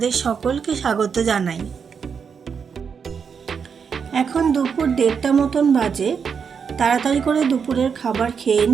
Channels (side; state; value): left; quieter; 6.4 dB